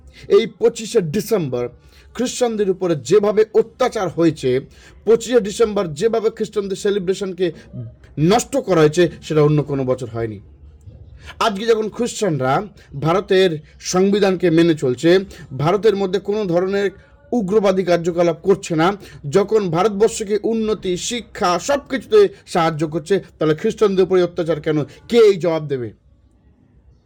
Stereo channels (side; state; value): both; identical; correlation 1.00